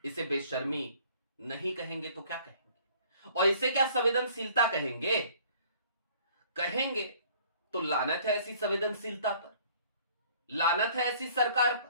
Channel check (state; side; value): inverted; both; correlation -0.55